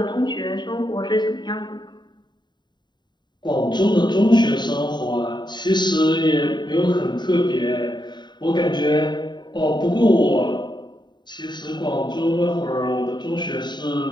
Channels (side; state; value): right; late; 0.21 ms